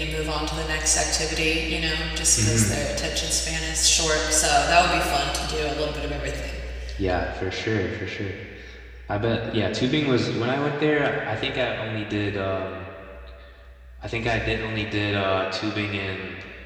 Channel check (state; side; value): identical; both; correlation 1.00